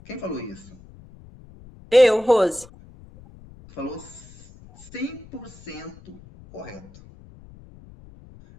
Quem falou isso? Eu, Rose. Falou 100% correto.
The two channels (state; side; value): noise; left; rumble, 21 dB below the sound